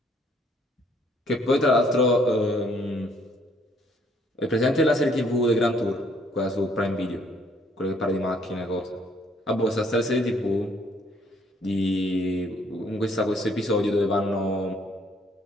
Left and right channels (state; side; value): normal; both; correlation 0.64